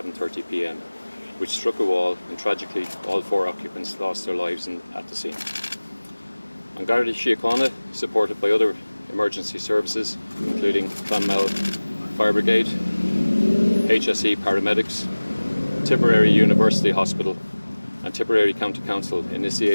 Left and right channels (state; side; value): inverted; both; correlation -1.00